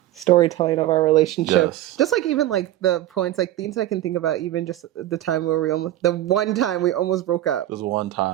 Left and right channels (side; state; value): left; quieter; 14.0 dB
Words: storytelling of our relationship. Yes. Just like even like the points, like things I can think about, even just the time where the one time we almost broke up. It was one